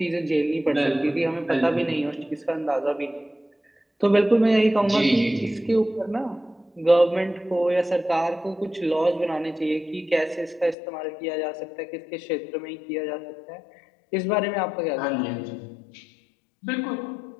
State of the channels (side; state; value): right; drops out; at 10.8 s